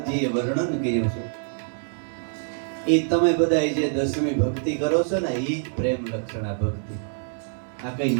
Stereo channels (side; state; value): left; silent; 62 dB below the other